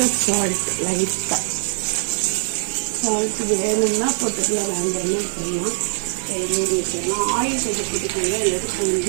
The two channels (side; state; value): left; silent; digital silence